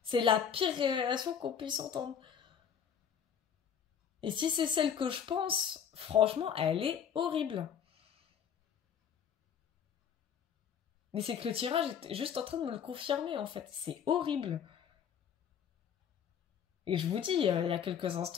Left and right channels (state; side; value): quieter; right; 7.9 dB